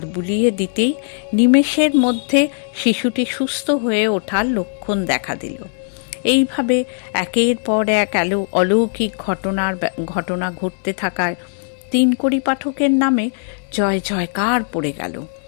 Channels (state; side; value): silent; right; digital silence